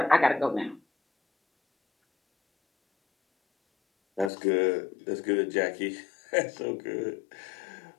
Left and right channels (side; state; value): right; drops out; at 4.3 s